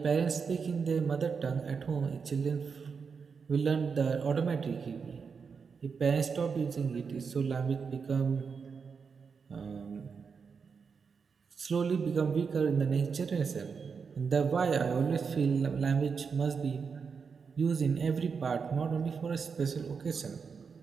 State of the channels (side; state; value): left; quieter; 5.7 dB